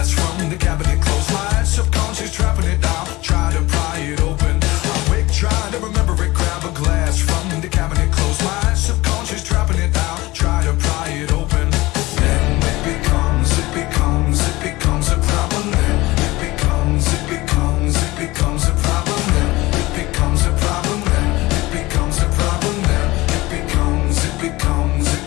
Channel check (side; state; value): right; quieter; 20.1 dB